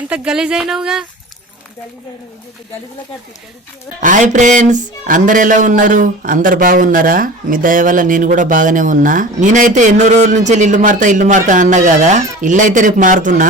గలీజ్ అయినావుగా. హాయ్ ఫ్రెండ్స్, అందరు ఎలా ఉన్నారు? అందరు బాగున్నారా? మీ దయ వల్ల నేను కూడా బాగానే ఉన్నా. నేనైతే ఎన్నో రోజుల నుంచి ఇల్లు మారుతా అన్నా కదా. ఇల్లు అయితే రేపు మారుతున్నా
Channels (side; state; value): both; normal; correlation 0.36